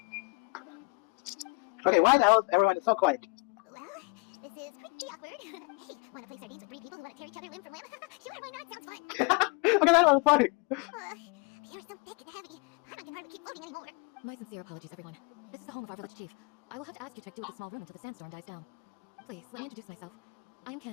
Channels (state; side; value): quieter; right; 30.9 dB